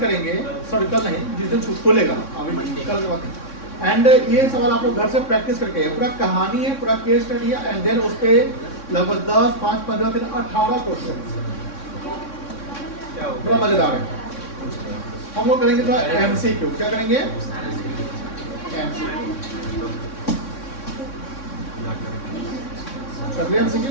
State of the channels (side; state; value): right; late; 3.6 ms